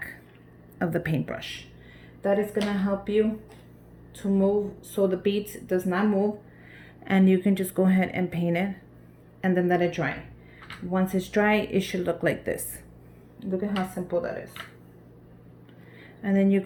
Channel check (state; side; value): identical; both; correlation 1.00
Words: of the paintbrush. That is gonna help you to move so the beads does not move, and you can just go ahead and paint it and then let it dry. Once it's dry, it should look like this. Look at how simple that is. And then you